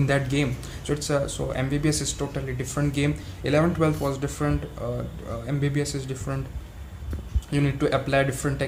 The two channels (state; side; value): identical; both; correlation 1.00